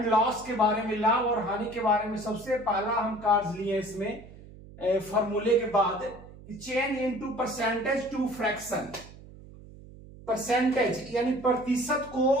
लॉस के बारे में, लाभ और हानि के बारे में सबसे पहला हम कार्य लिए इसमें फॉर्मूले के बाद, change into percentage to fraction. Percentage यानी प्रतिशत को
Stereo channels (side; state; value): right; noise; hum, 19 dB below the sound